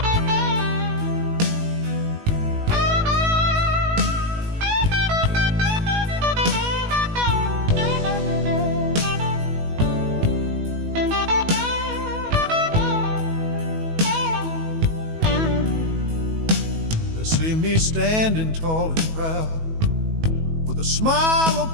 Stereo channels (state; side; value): late; left; 19 ms